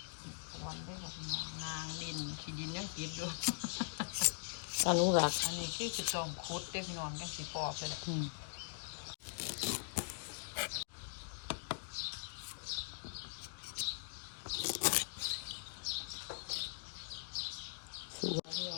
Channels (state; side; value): silent; right; digital silence